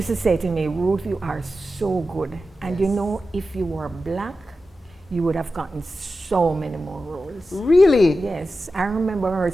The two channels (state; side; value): normal; both; correlation 0.92